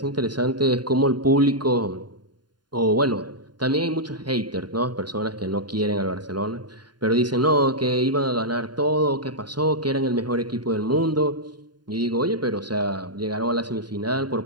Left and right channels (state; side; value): late; left; 0.70 ms